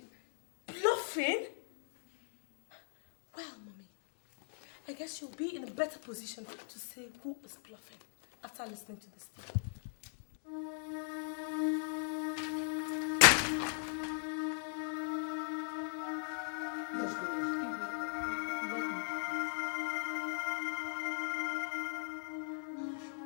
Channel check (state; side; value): silent; right; digital silence